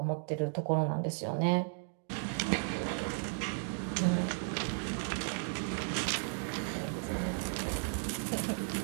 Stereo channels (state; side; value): silent; left; digital silence